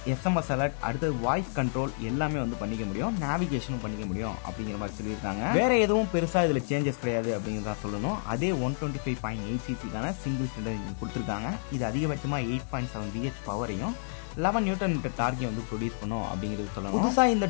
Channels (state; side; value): silent; right; digital silence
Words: SMS அலர்ட், அடுத்தது வாய்ஸ் கண்ட்ரோல் எல்லாமே வந்து பண்ணிக்க முடியும். நேவிகேஷனும் பண்ணிக்க முடியும் அப்படிங்கிற மாதிரி சொல்லியிருக்காங்க. வேற எதுவும் பெருசாக இதில் சேஞ்சஸ் கிடையாது அப்படிங்கிறத சொல்லணும். அதே 125.8cc சிங்கிள் சிலிண்டர் இன்ஜின் கொடுத்துருக்காங்க. இது அதிகபட்சமாக 8.7 BH பவரையும் 11 நியூட்டன் மீட்டர் டார்கை வந்து ப்ரொடியூஸ் பண்ணும் அப்படிங்கிறது சொல்லணும். புதுசாக இந்த